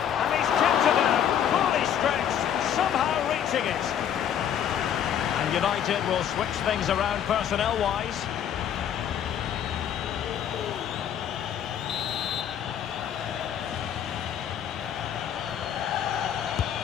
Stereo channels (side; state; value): right; quieter; 9.4 dB